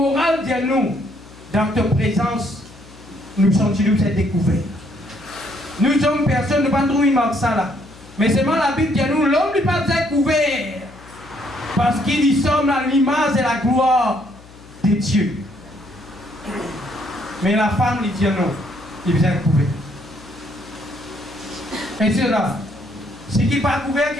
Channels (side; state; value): left; noise; hum, 22 dB below the sound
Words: dis-nous, dans ta présence, nous sommes cette découverte. Nous sommes personne, nous ne pas trouver ça là. Mais seulement la Bible dit nous, l'homme n'est pas découvert. Parce qu'il y sommes à l'image et la gloire de Dieu. Mais la femme lui dit non, il vient découvert. Et c'est là. Ce qui n'est pas couvert,